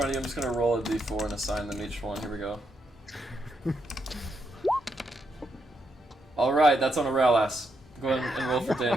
of you. I'm just gonna roll a d4 and assign them each one. Here we go. Alright, that's on Aurelius. Go ahead and roll for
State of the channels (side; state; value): both; normal; correlation 0.80